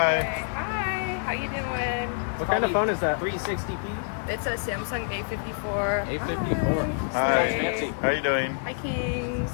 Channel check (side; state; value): right; silent; digital silence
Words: Okay. Hi. How you doing? What kind of phone is that? 360p? It's a Samsung A54. A54. Hi. How you doing? Hi, Kings.